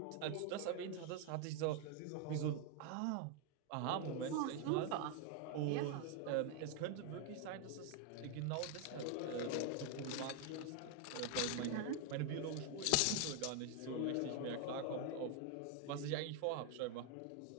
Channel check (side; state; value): both; different; correlation 0.01